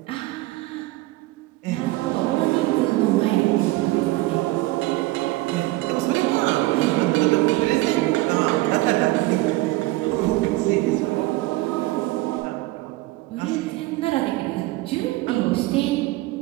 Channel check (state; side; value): quieter; left; 19.5 dB